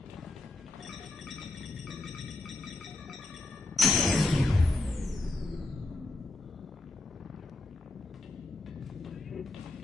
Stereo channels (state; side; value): quieter; right; 3.1 dB